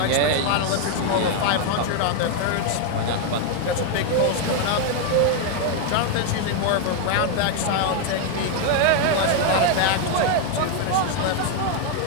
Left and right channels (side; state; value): both; different; correlation 0.01